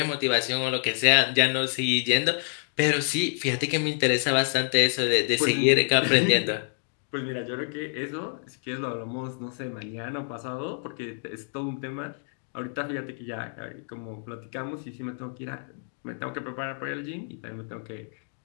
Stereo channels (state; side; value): silent; right; 59 dB below the other